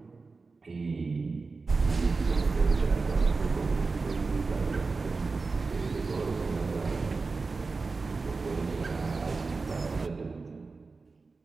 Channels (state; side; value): quieter; left; 4.1 dB